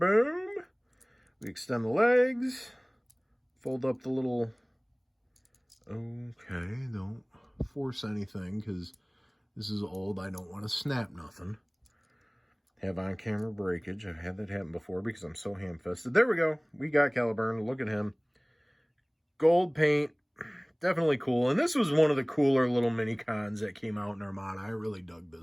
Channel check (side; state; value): both; identical; correlation 1.00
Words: We extend the legs. Fold up the little... Okay, don't force anything, because this is old. I don't want to snap nothing. Have on-camera breakage. I've had that happen before because I'm so ham-fisted. There we go. We got Caliburn. Look at him. Gold paint. Definitely cool. And this was one of the cooler little mini cons that came out in Armada. I really dug